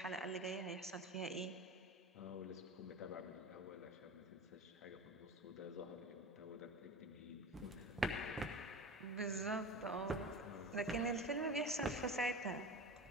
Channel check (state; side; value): normal; both; correlation 0.32